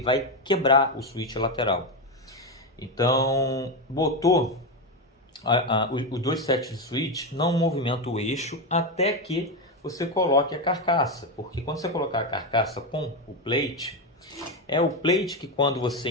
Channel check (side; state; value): both; normal; correlation 0.10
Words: quebrar o switch lateral. Então, botou os dois sets de switch, não movimenta o eixo até que você coloque a carcaça, porque quando você colocar a carcaça com o plate, é o plate que quando você